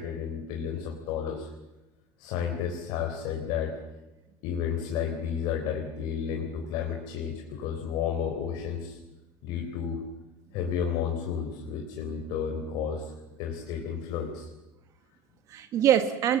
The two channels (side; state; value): both; normal; correlation 0.28